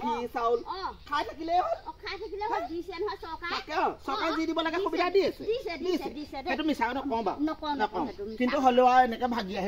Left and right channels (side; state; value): both; identical; correlation 1.00